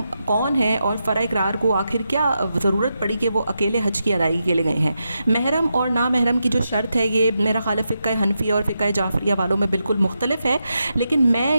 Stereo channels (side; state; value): both; inverted; correlation -0.86